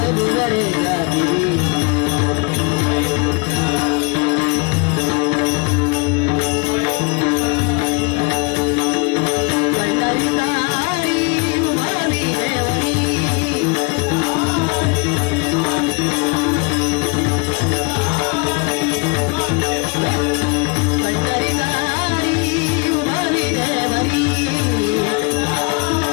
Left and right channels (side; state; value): right; quieter; 30.6 dB